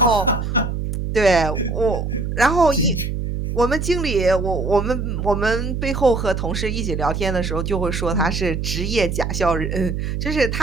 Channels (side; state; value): right; noise; hum, 3 dB below the sound